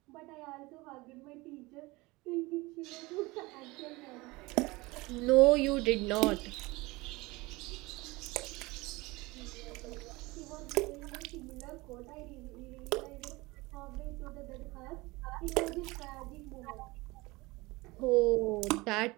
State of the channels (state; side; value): quieter; left; 22.5 dB